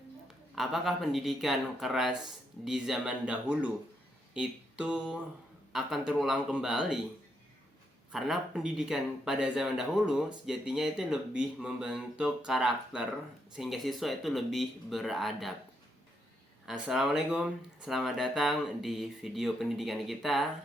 apakah pendidikan keras di zaman dahulu itu akan terulang kembali? Karena pendidikan pada zaman dahulu sejatinya itu lebih membentuk karakter sehingga siswa itu lebih beradab. Assalamualaikum, selamat datang di video pendidikan kita.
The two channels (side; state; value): both; normal; correlation 0.79